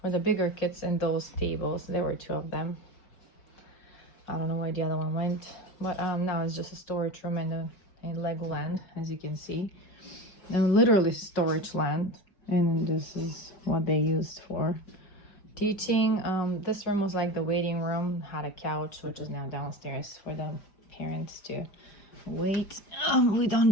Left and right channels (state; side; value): late; right; 4.9 ms